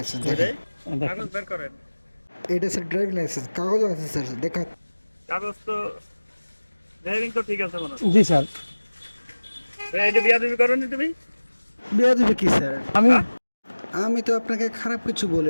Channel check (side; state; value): both; inverted; correlation -1.00